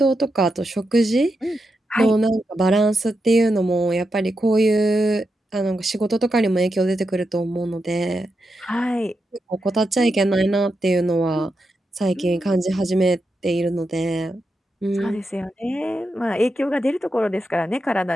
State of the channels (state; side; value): normal; both; correlation 0.86